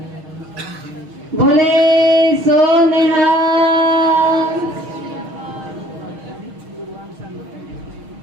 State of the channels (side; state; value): left; late; 6.4 ms